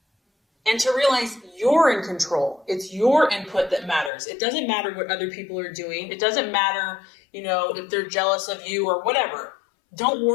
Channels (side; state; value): right; drops out; at 4.1 s